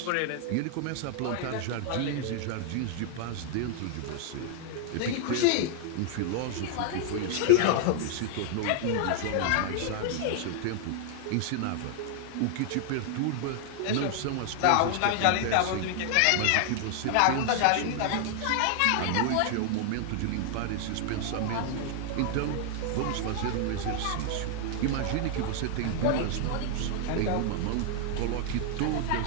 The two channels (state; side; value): different; both; correlation 0.00